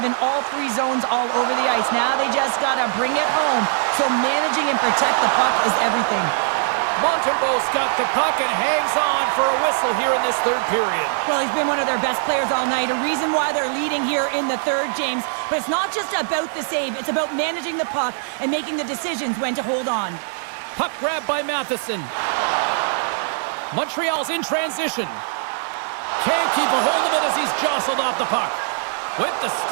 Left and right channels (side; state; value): left; silent; digital silence